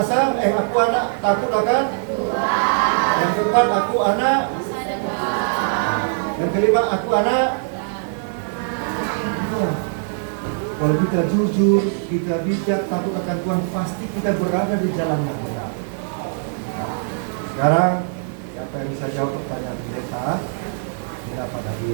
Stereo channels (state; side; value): silent; left; digital silence